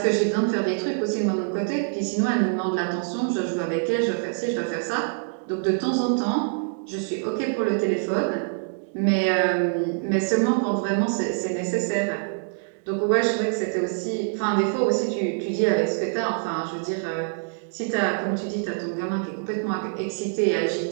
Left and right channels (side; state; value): left; silent; digital silence